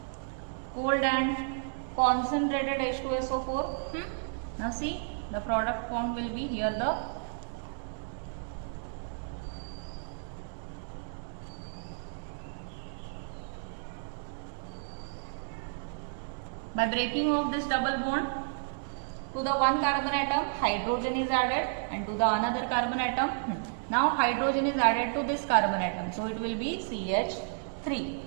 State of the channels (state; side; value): silent; left; digital silence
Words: cold and concentrated H2SO4. Now see, the product formed will be here the by breaking of this double bond, to the one carbon atom hydrogen is added, and to the another carbon atom, now hydrogen is added to this carbon atom, so it will be CH3.